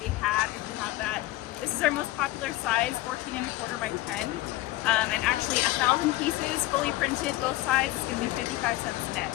a hat if you have that. This is our most popular size, 14¼ by 10. And actually 1,000 pieces, fully printed, both sides. It's gonna be 55 cents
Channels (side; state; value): right; quieter; 17.4 dB